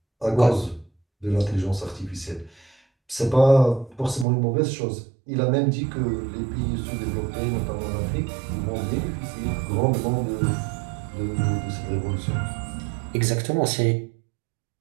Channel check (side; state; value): left; drops out; at 4.2 s